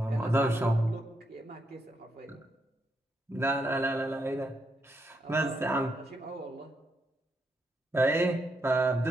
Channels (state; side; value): normal; both; correlation 0.80